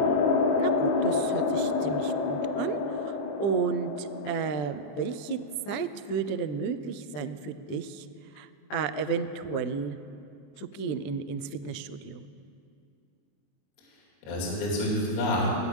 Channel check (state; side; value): late; right; 20 ms